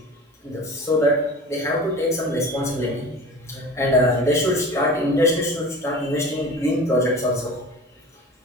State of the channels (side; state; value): both; normal; correlation 0.37